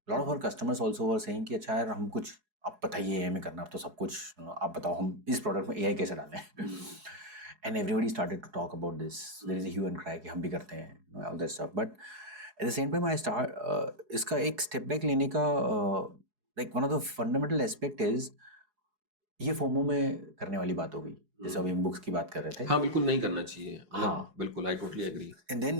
a lot of our customers also were saying कि अच्छा यार हम कुछ आप बताइए AI में करना, अब तो सब कुछ आप बताओ हम इस प्रोडक्ट में AI कैसे डालें. And everybody started to talk about this. There is a hue and cry कि हम भी करते हैं, all that stuff. But at the same time I start इसका एक step back लेने का like one of the fundamental aspect is ये फोमो में करने वाली बात हो गई, जैसे अभी हम बुक्स की बात कर रहे थे. हाँ बिल्कुल नहीं करना चाहिए. हाँ बिल्कुल, I totally agree. And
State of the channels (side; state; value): left; late; 4.7 ms